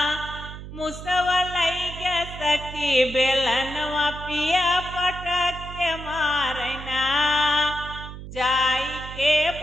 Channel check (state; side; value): noise; right; hum, 11 dB below the sound